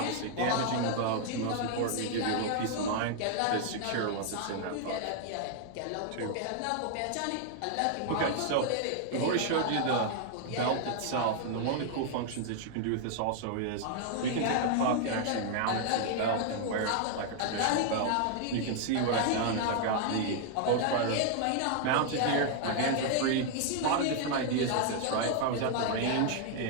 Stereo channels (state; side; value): different; both; correlation 0.00